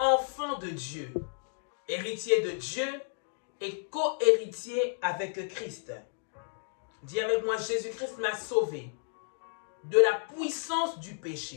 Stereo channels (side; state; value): right; silent; digital silence